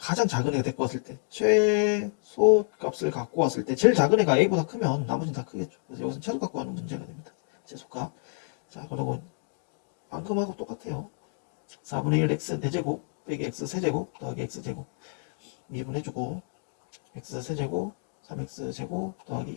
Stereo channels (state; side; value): silent; right; 59 dB below the other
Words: 작은 애가 데리고 왔을 때 최소 값을 갖고 왔을 때 제일 작은 애가 a보다 크면 나머지는 다 크겠죠. 그래서 여기서 최소 갖고 가는 문제가 됩니다. 최소값. 자, 그리고 방금하고 똑같아요. 4분의 1 x 4제곱 빼기 x 세제곱 더하기 x 제곱 미분해주고 x 세제곱 3x 제곱 더하기